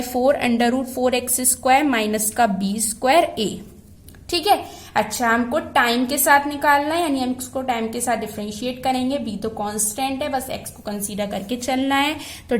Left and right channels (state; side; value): identical; both; correlation 1.00